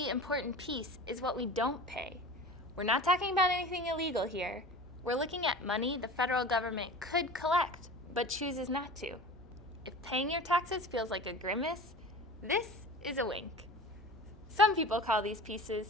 important piece is what we don't pay. We're not talking about anything illegal here. We're looking at money the federal government could collect, but chooses not to. If paying your taxes feels like a grimace, this is a wink. Some people call these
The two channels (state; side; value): normal; both; correlation 0.36